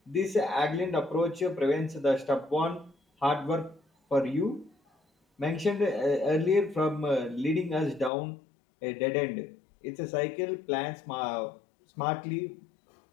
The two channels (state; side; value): drops out; right; at 8.1 s